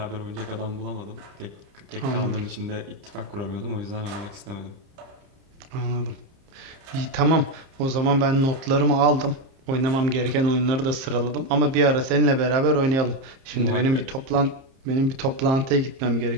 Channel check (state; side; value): late; left; 30 ms